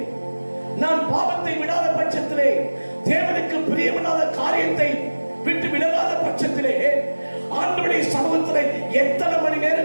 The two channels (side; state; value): both; inverted; correlation -1.00